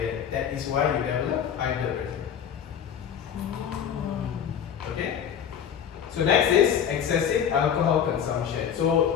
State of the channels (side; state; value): right; quieter; 8.5 dB